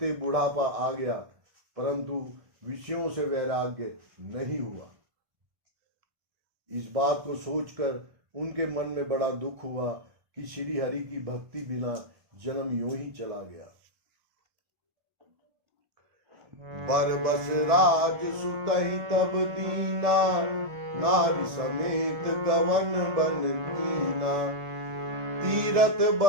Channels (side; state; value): left; late; 1.7 ms